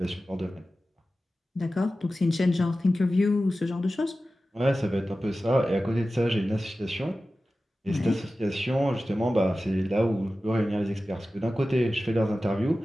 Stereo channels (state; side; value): normal; both; correlation 0.95